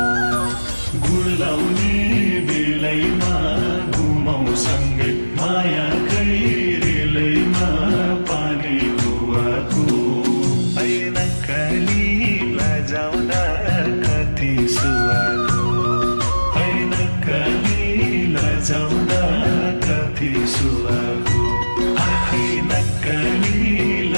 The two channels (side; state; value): both; inverted; correlation -1.00